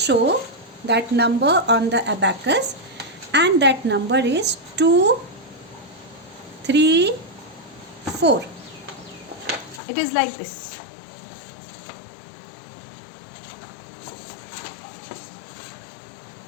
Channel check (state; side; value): drops out; right; at 9.8 s